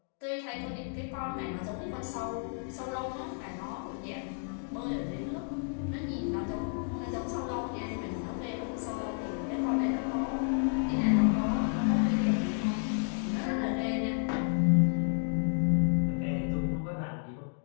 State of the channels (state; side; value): silent; right; 57 dB below the other